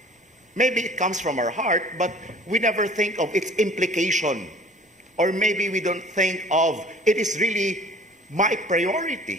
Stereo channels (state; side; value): normal; both; correlation 0.50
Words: Maybe it comes from our heart, but we never think of its implication. Or maybe we don't think of it is really my